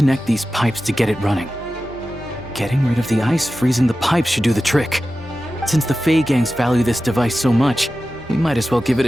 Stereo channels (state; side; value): normal; both; correlation 0.94